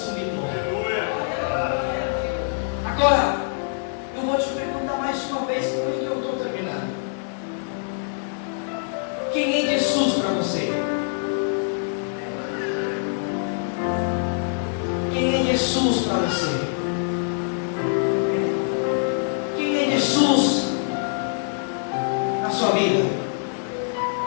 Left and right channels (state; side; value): silent; right; digital silence